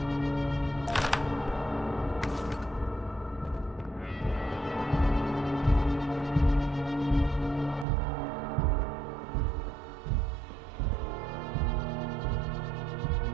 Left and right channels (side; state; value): left; drops out; at 7.9 s